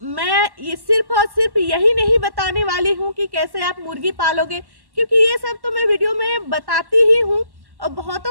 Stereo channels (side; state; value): left; late; 1.1 ms